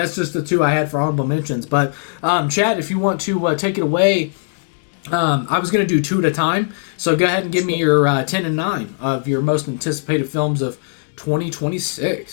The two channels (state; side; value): silent; right; 67 dB below the other